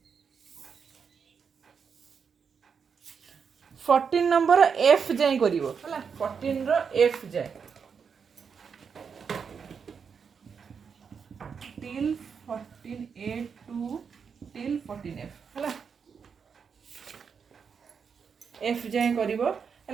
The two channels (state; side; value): quieter; left; 6.3 dB